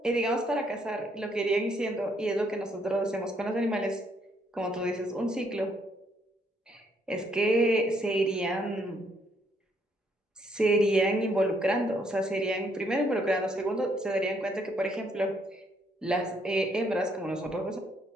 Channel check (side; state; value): both; normal; correlation 0.71